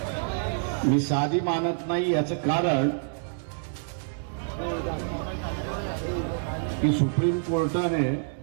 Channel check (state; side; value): silent; left; digital silence